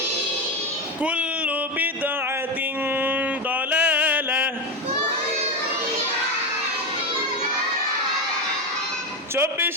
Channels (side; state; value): both; normal; correlation 0.14